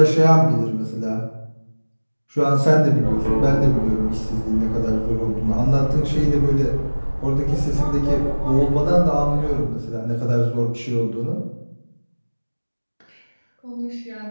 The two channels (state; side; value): inverted; both; correlation -1.00